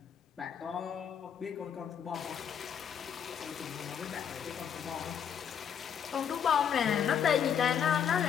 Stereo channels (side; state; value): right; quieter; 8.2 dB